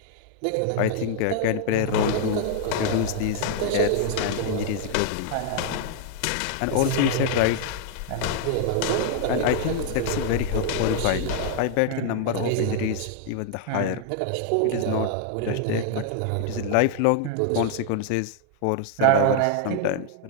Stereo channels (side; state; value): both; different; correlation 0.00